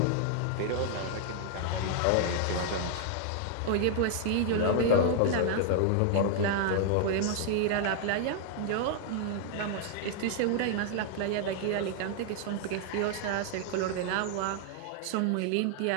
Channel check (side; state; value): both; different; correlation -0.01